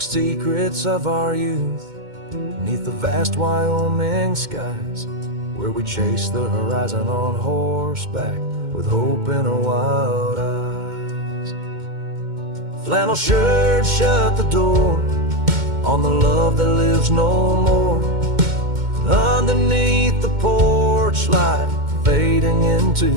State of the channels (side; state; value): left; late; 2.1 ms